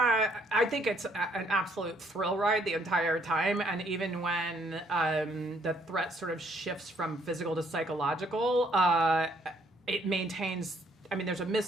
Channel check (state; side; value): normal; both; correlation 0.67